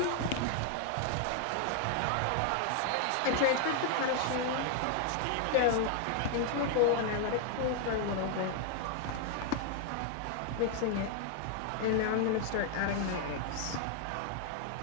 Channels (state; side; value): different; both; correlation 0.00